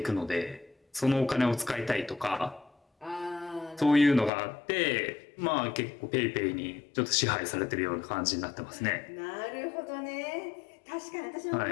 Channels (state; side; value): drops out; right; at 4.3 s